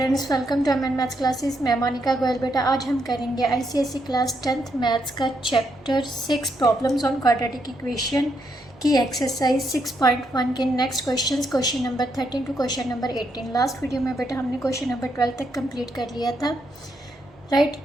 welcome to MN maths classes. मैं मोनिका गोयल। बेटा आज हम करेंगे आईसीएसई क्लास 10th मैथ्स का chapter 6 problems on quadratic equation की एक्सरसाइज 6.1 के next question number 13 to question number 18। Last video में बेटा हमने क्वेश्चन नंबर 12 तक कंप्लीट कर लिया था, राइट।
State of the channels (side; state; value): both; normal; correlation 0.78